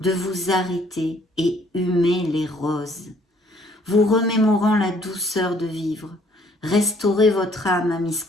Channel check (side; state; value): both; normal; correlation 0.62